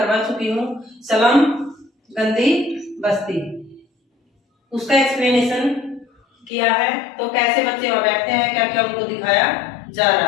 चुकी हूँ। सलम गंदी बस्ती, उसका एक्सप्लेनेशन किया है। तो कैसे बच्चे वहां बैठते हैं, क्या क्या उनको दिखाया जा रहा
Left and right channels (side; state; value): right; drops out; at 6.5 s